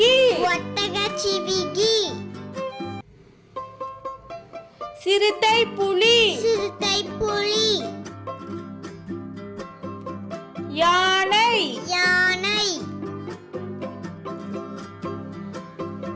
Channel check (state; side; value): identical; both; correlation 1.00